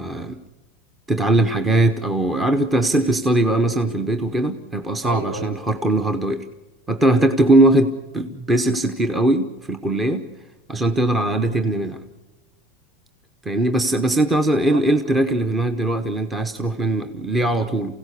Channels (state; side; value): normal; both; correlation 0.60